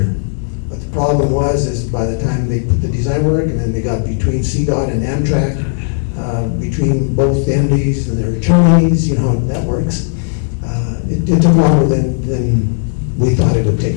but the problem is by the time they put the design work and then they got between CDOT and Amtrak, between both the entities and their attorneys, you know how that works. It took longer than we thought it would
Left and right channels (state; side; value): silent; right; digital silence